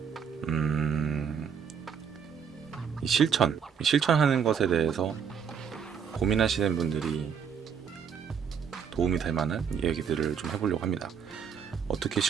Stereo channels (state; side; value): quieter; left; 7.1 dB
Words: 이 실천하는 것에 대해서 고민하시는 분들이 도움이 될 만한 얘기들을 좀 해보려고 합니다. 어떻게